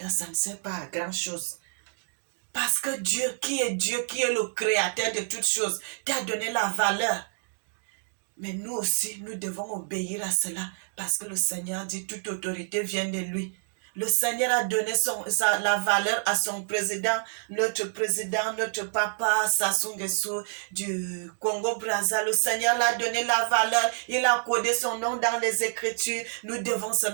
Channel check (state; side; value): silent; left; 59 dB below the other